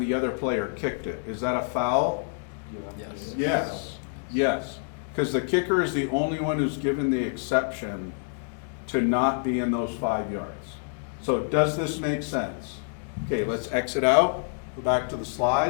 other player kicked it? Is that a foul? Yes. Yes. Yes. Because the kicker is the only one who's given the exception to not be in those 5 yards. So does this make sense? Okay, let's exit out. Go back to the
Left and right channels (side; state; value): right; silent; 60 dB below the other